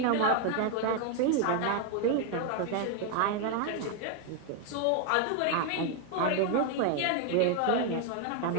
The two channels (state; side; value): different; both; correlation 0.00